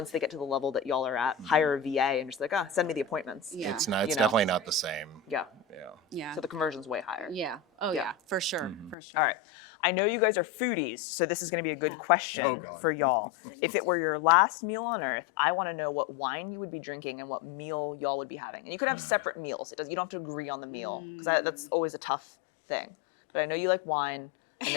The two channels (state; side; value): drops out; right; at 9.0 s